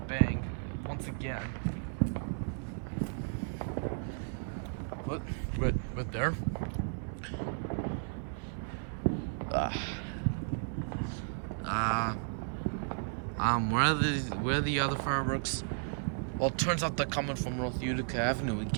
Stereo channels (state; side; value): silent; left; 55 dB below the other